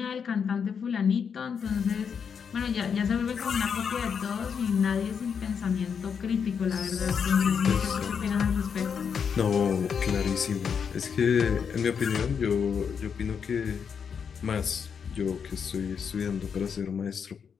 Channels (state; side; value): quieter; right; 6.8 dB